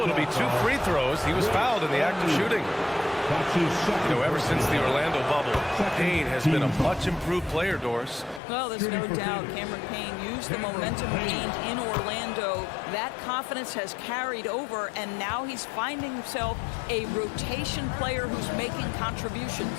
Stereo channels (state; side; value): drops out; right; at 8.4 s